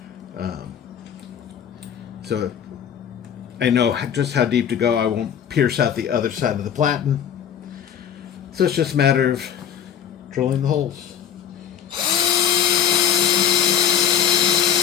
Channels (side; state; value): right; quieter; 8.9 dB